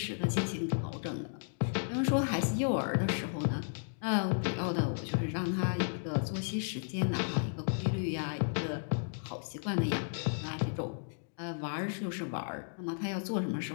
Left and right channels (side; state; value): right; silent; digital silence